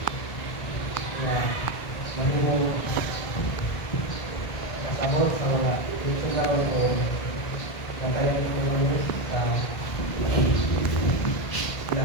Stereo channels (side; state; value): right; late; 1.6 ms